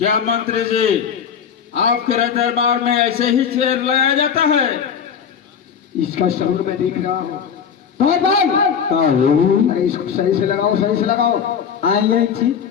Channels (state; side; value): quieter; right; 7.4 dB